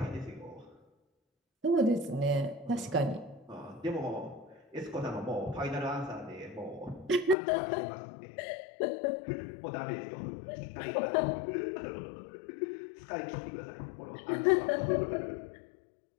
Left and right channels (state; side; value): drops out; right; at 7.4 s